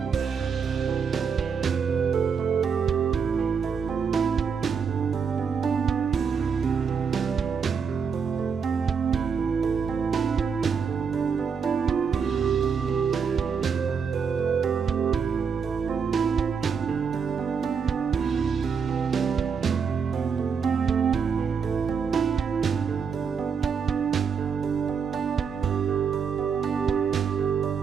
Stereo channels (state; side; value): quieter; left; 6.2 dB